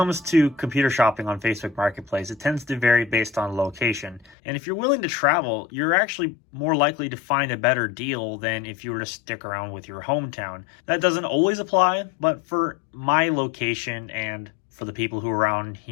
to computer shopping on Facebook Marketplace, it tends to vary based on location. And if you're willing to travel, you're actually more likely to find a better deal than if you were to stick around with your hometown. That doesn't always apply, but for my location and for the people who around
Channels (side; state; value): right; drops out; at 4.4 s